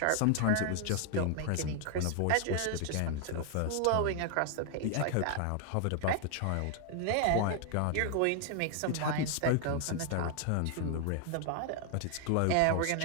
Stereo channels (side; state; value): both; different; correlation 0.00